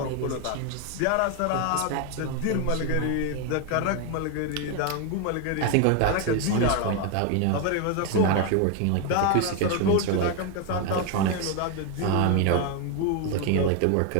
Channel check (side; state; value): both; different; correlation 0.01